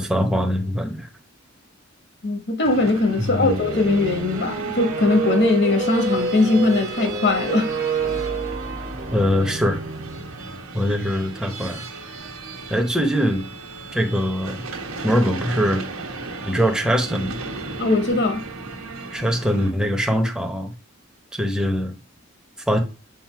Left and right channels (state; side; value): normal; both; correlation 0.63